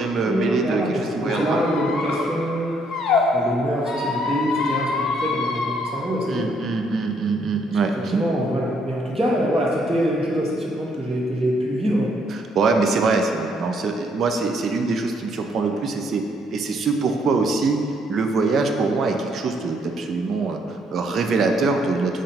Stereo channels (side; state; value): both; normal; correlation 0.70